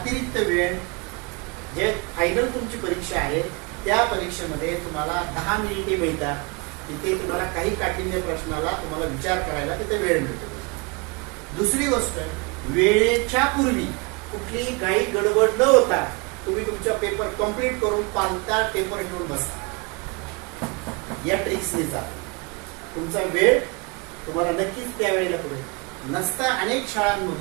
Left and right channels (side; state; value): left; quieter; 29.3 dB